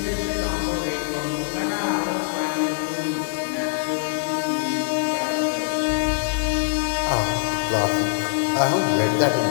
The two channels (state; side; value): silent; right; digital silence